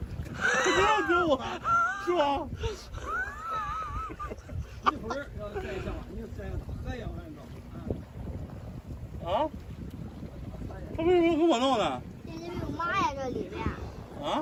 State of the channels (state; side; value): identical; both; correlation 1.00